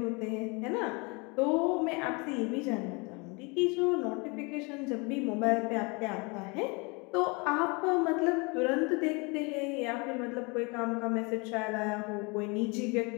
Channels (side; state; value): right; quieter; 29.5 dB